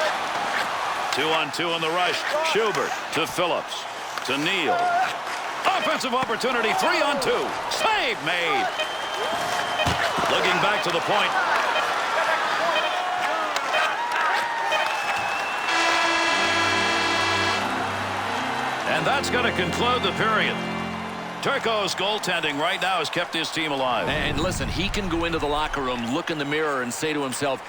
2-on-2 in the rush. Schubert to Phillips. To Neal. Offensive opportunity. 3-on-2. Save made. Looking back to the point. And that's going to conclude the period. Turco's goaltending right now has kept his team alive. And listen, he can go into the locker room, look in the mirror, and say to himself,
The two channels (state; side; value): identical; both; correlation 1.00